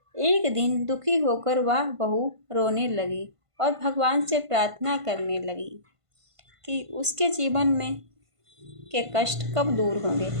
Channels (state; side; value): late; left; 1.5 ms